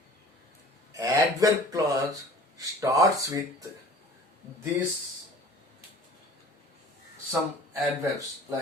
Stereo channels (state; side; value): normal; both; correlation 0.46